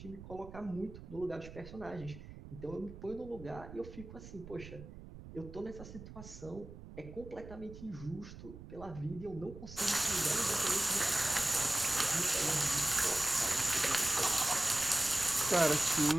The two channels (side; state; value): right; noise; rumble, 14 dB below the sound